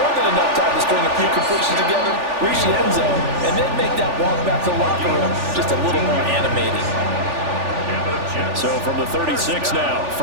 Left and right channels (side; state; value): left; late; 3.4 ms